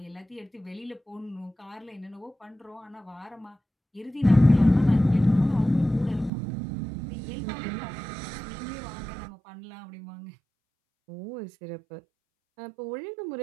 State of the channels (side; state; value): left; drops out; at 6.3 s